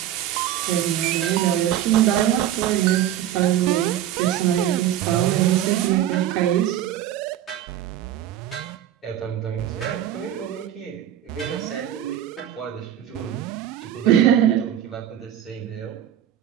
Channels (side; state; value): left; quieter; 11.5 dB